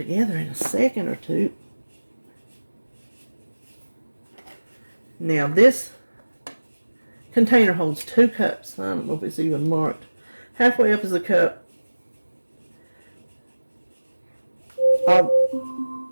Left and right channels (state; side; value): inverted; both; correlation -1.00